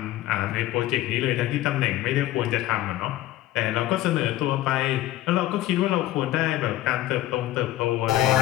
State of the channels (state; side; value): quieter; right; 14.7 dB